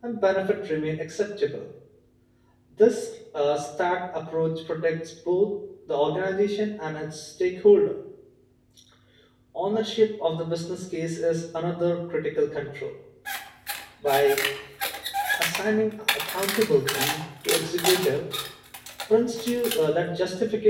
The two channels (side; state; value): both; identical; correlation 1.00